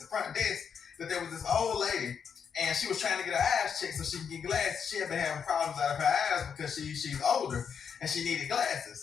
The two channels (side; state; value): right; quieter; 7.0 dB